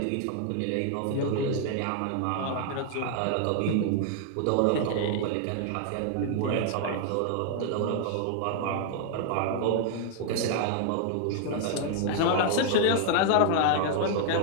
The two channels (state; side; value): different; both; correlation 0.00